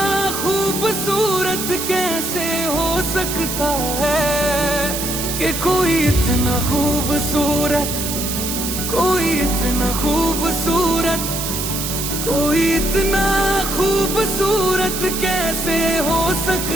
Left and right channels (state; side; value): noise; right; hiss, 4 dB below the sound